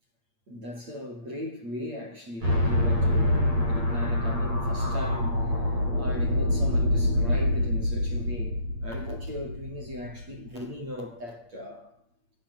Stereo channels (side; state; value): left; late; 8.6 ms